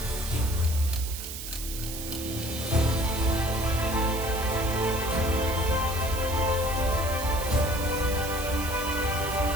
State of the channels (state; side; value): noise; right; hiss, 8 dB below the sound